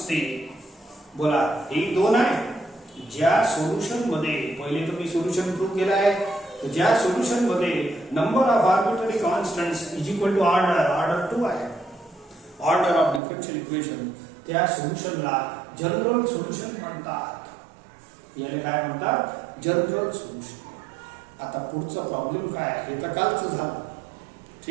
बोला हे दोन आहे. ज्या सोल्यूशन मध्ये पहिले तर मी सोल्यूशन प्रूव्ह केला आहे. ज्या सोल्यूशन मध्ये number of arbitrary constants is equal to order 2 आहे, ऑर्डर ऑफ डिफरन्शियल इक्वेशन, त्या सोल्यूशनला जनरल सोल्यूशन म्हणतात. याला काय म्हणतात? General solution. आता पुढचा प्रॉब्लेम काय आहे हे तर कालचं झालं.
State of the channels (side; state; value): left; drops out; at 13.2 s